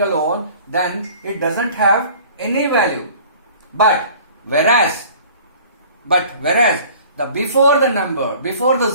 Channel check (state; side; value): inverted; both; correlation -0.48